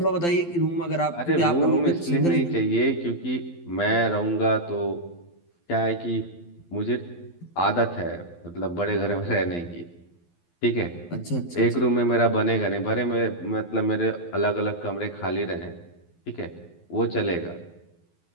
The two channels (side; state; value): right; late; 12 ms